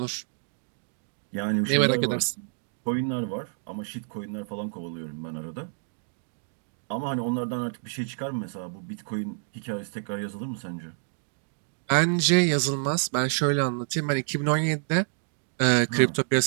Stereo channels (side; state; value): left; silent; digital silence